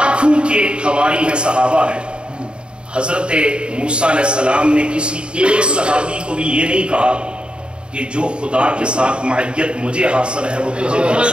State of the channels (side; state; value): left; late; 0.053 ms